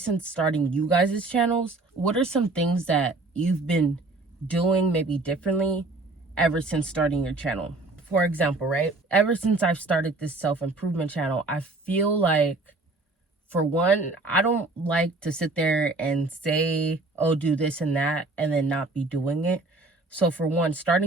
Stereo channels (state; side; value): quieter; left; 3.2 dB